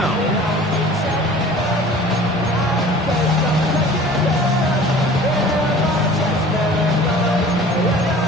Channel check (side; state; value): both; normal; correlation 0.45